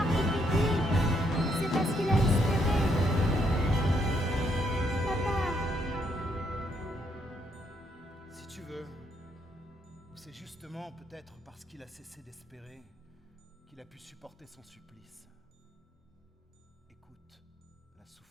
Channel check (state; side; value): normal; both; correlation 0.73